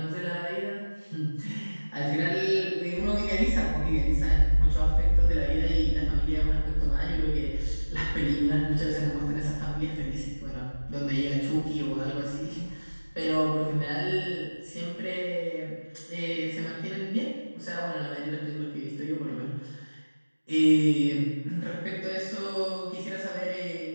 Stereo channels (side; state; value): both; inverted; correlation -1.00